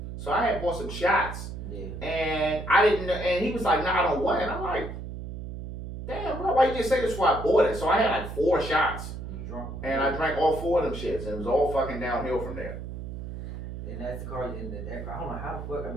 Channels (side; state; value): right; noise; hum, 8 dB below the sound